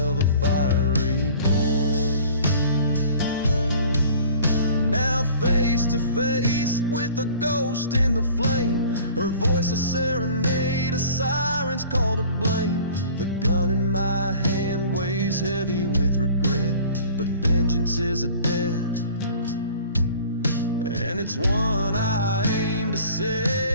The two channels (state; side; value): inverted; both; correlation -0.47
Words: a fiery born. Now face to face with the ghost in the flame, her voice a serenade, a siren's call to blame. The gun in my hand weighs heavy with regret, but vengeance is a debt, and it's one I aim to